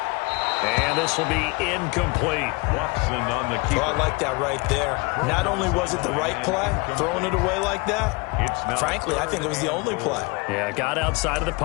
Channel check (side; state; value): right; quieter; 27.2 dB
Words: And this will be incomplete. Watson on the keeper. Oh, I like that right there. Not only was it the right play, throwing it away like that, frankly, I think it was the only play. Yeah, got outside of the